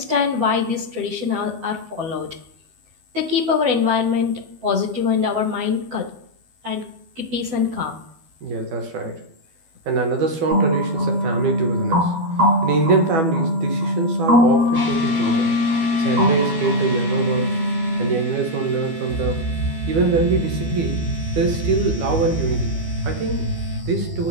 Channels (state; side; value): late; left; 12 ms